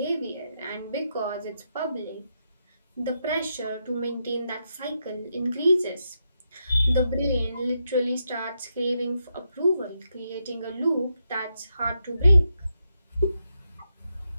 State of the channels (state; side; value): inverted; both; correlation -0.83